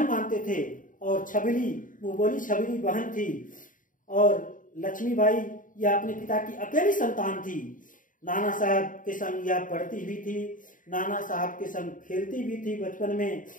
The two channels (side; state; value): right; late; 0.39 ms